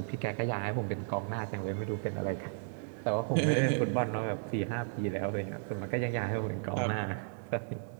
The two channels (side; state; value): left; silent; 55 dB below the other